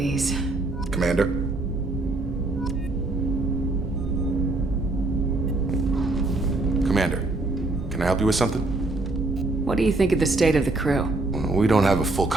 Commander? Commander, can I help you with something? What do you think of the state of the crew? We don't have a full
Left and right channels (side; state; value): left; quieter; 3.0 dB